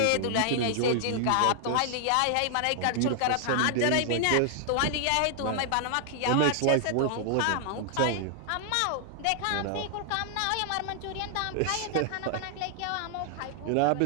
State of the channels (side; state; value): both; different; correlation 0.00